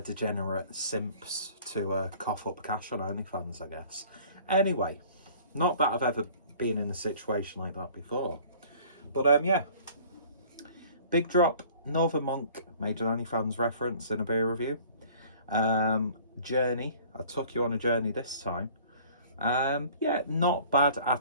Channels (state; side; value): inverted; both; correlation -0.50